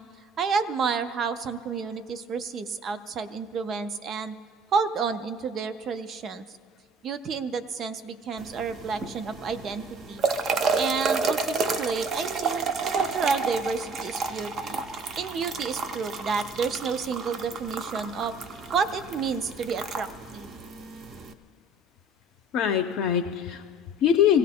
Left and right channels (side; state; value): both; normal; correlation 0.49